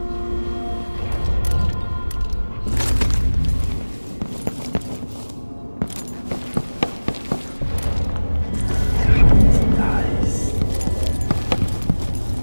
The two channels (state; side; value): inverted; both; correlation -1.00